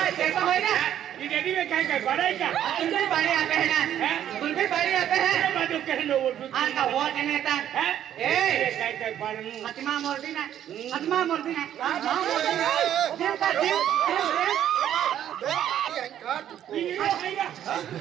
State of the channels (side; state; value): left; quieter; 10.7 dB